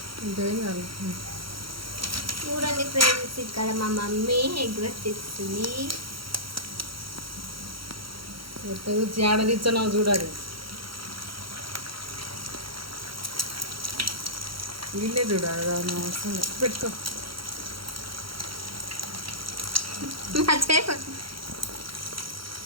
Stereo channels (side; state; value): left; late; 0.74 ms